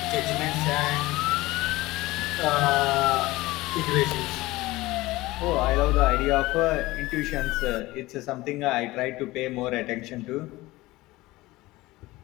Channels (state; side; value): quieter; right; 19.2 dB